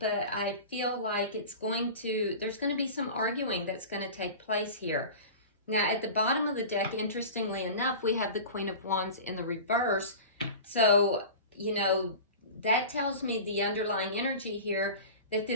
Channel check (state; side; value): inverted; both; correlation -0.34